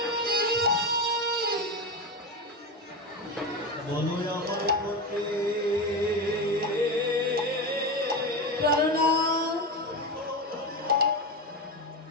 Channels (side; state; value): both; normal; correlation 0.18